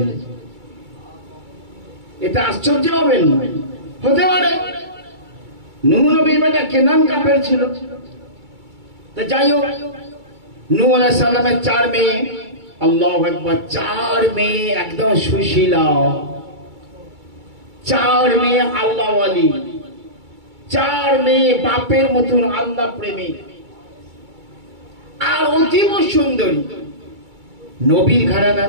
এটা আশ্চর্য হবেন না, হতে পারে। নূহ নবীর বেটা কেনান কাফের ছিল। তো যাই হোক, নূহ আলাইহিস সালামের 4 মেয়ে, আল্লাহু আকবার, 4 মেয়ে একদম সুশীলা, 4 মেয়ে আল্লাহ ওয়ালি, 4 মেয়ে বাপের মতন আল্লাহ প্রেমী, আর অতীব সুন্দরী। নবীর ঘরানা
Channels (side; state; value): left; late; 2.3 ms